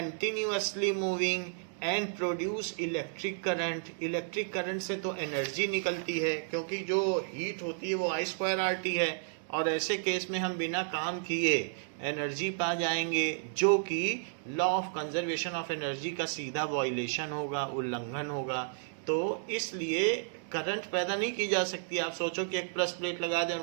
moving and produce electric current. Electric current से तो एनर्जी निकलती है, क्योंकि जो हीट होती है वो I2RT है, और ऐसे केस में हम बिना काम किए एनर्जी पा जाएंगे, जो कि law of conservation of energy का सीधा वायलेशन होगा, उल्लंघन होगा। तो इसलिए करंट पैदा नहीं की जा सकती। आप सोचो कि एक प्लस प्लेट लगा दें और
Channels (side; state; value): left; silent; 56 dB below the other